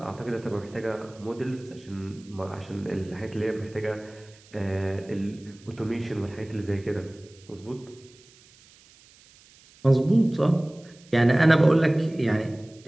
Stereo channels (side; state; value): right; noise; hiss, 26 dB below the sound